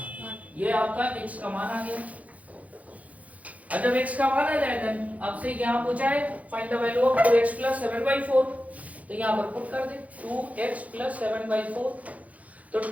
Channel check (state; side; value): late; left; 0.070 ms